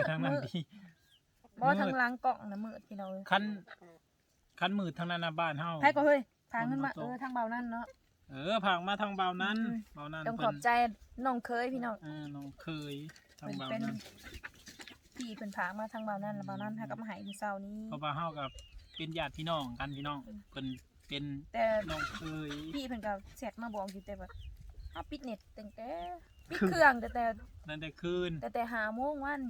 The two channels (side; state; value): both; identical; correlation 1.00